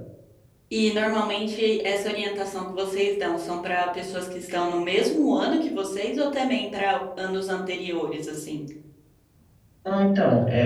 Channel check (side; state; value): both; identical; correlation 1.00